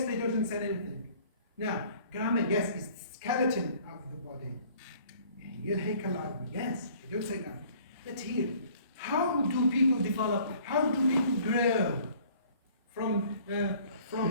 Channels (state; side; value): inverted; both; correlation -0.54